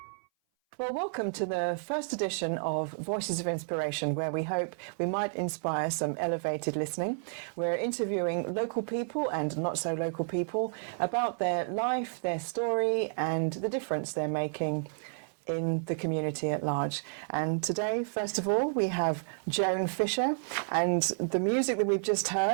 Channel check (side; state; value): left; silent; 57 dB below the other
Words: Well, welcome to the first edition of Voices of Inspiration, where we hope we might inspire some elevated listening. We're interviewing local people and not so local people about their life, their story, and the difference they're making in the community at large. And today, first of all, we have Joan Fisher, and the music that we've just